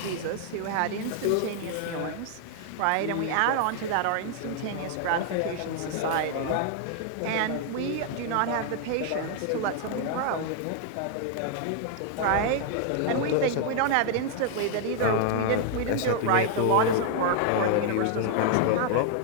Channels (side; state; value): both; different; correlation 0.00